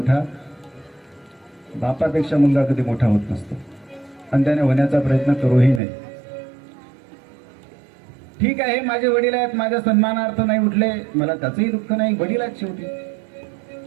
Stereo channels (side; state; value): left; drops out; at 5.8 s